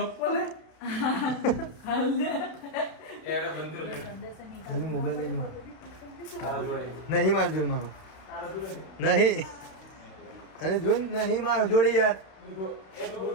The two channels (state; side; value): late; right; 32 ms